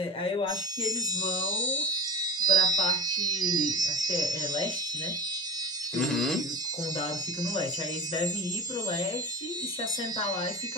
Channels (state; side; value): normal; both; correlation 0.32